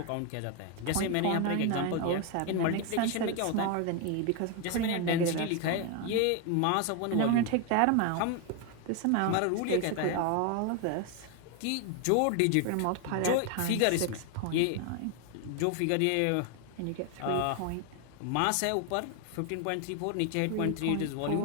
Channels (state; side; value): different; both; correlation 0.01